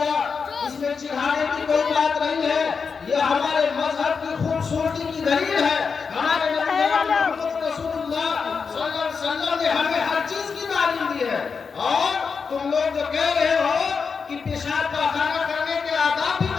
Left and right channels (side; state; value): right; quieter; 5.5 dB